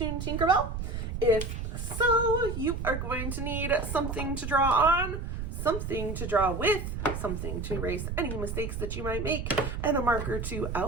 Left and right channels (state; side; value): noise; right; rumble, 4 dB below the sound